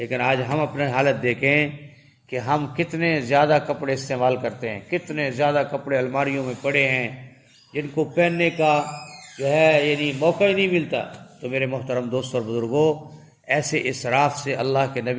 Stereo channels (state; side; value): identical; both; correlation 1.00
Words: آج ہم اپنے حالت دیکھیں کہ ہم کتنے زیادہ کپڑے استعمال کرتے ہیں، کتنے زیادہ کپڑے الماریوں میں پڑے ہیں جن کو پہننے کا جو ہے یعنی موقع ہی نہیں ملتا. تو میرے محترم دوستوں اور بزرگوں، ایسے اسراف سے اللہ کے